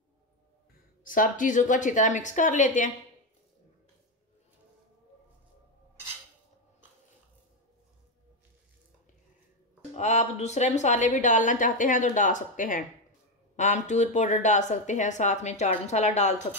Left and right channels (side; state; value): both; normal; correlation 0.08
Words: सब चीजों को अच्छी तरह मिक्स कर लेते हैं। आप दूसरे मसाले भी डालना चाहते हैं तो डाल सकते हैं। आमचूर पाउडर डाल सकते हैं, साथ में चाट मसाला डाल